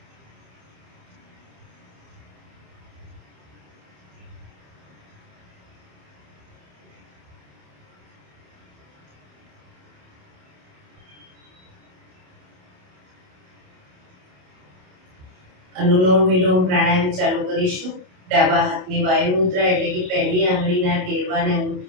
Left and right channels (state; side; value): late; left; 27 ms